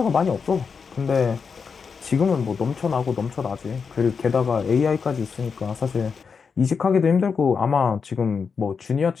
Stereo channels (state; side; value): quieter; right; 5.7 dB